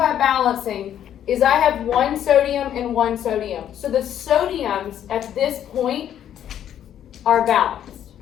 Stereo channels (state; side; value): quieter; right; 10.3 dB